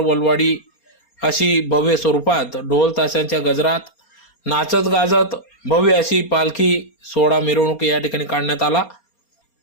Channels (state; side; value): late; right; 4.3 ms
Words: अशी भव्य स्वरूपात ढोल ताशांच्या गजरात नाचत गाजत भव्य अशी पालखी सोहळा मिरवणूक या ठिकाणी काढण्यात आला।